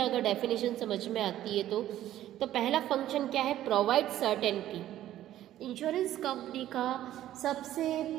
अगर डेफिनेशन समझ में आती है तो पहला फंक्शन क्या है? Provide certainty. इंश्योरेंस कंपनी का सबसे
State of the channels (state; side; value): quieter; left; 12.9 dB